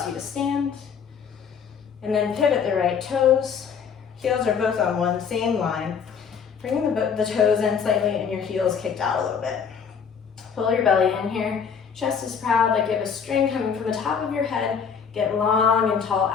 you to stand. And then pivot the right toes. Heels are both on one same line. Bring the toes in slightly and your heels kicked out a little bit. Pull your belly in here. Chest is proud, like you have a string coming from the top of your head. Get long and tall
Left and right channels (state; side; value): quieter; right; 6.6 dB